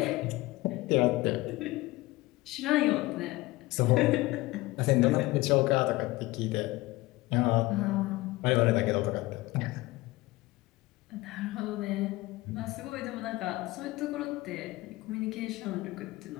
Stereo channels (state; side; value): quieter; right; 19.7 dB